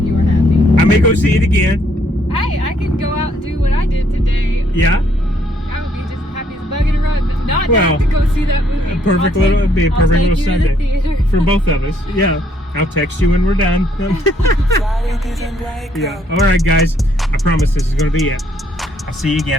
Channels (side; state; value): both; normal; correlation 0.68